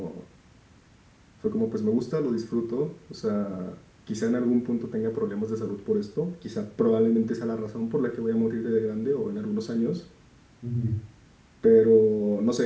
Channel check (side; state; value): both; identical; correlation 1.00